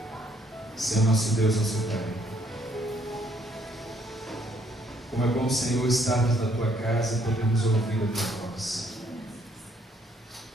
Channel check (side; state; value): both; normal; correlation 0.67